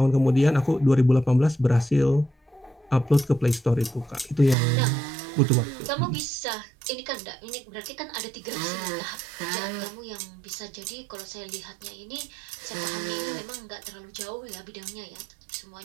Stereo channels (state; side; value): drops out; left; at 4.5 s